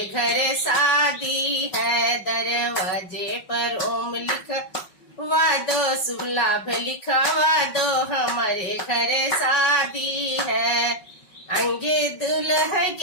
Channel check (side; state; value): right; late; 5.4 ms